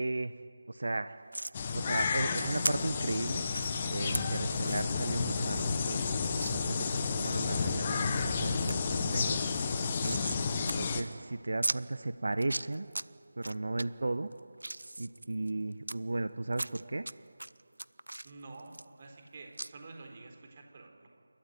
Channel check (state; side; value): inverted; both; correlation -0.88